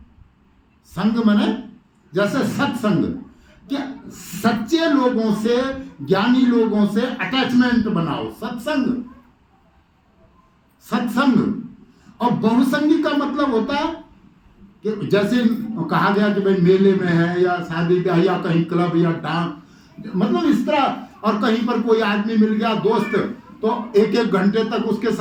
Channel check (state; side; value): identical; both; correlation 1.00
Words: संग माने जैसे सत्संग, क्या सच्चे लोगों से, ज्ञानी लोगों से अटैचमेंट बनाओ, सत्संग। और बहुसंगी का मतलब होता है कि जैसे कहा गया कि भाई मेले में है या शादी ब्याह या कहीं क्लब या डांस, मतलब इस तरह, और कहीं पर कोई आदमी मिल गया दोस्त, तो एक एक घंटे तक उसके